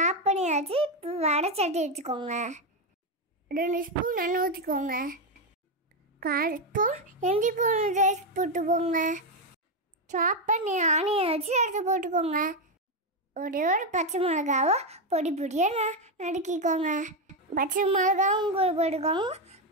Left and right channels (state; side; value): normal; both; correlation 0.06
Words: பண்ணியாச்சு. வடை சட்டி வச்சுக்கோங்க. 2 ஸ்பூன் எண்ணெய் ஊற்றிக்கோங்க. 1/4 ஸ்பூன் இஞ்சி பூண்டு பேஸ்ட் போட்டுக்கோங்க. சாப் பண்ணி ஆனியன் வச்சு எடுத்து போட்டுக்கோங்க. ஒரே ஒரு பச்சை மிளகாவை பொடி பொடியாக நறுக்கிக்கோங்க. பச்சை மிளகாவும் கூட போட்டுக்கோங்க.